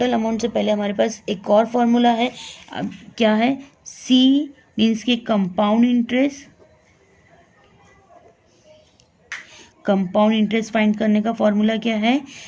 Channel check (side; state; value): both; identical; correlation 1.00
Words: अमाउंट से पहले हमारे पास एक और फॉर्मूला है, अब क्या है सी मीन्स के compound interest, compound interest find करने का फॉर्मूला क्या है